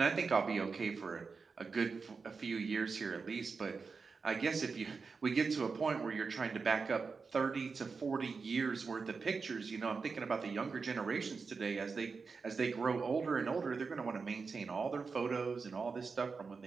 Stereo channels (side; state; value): left; quieter; 4.8 dB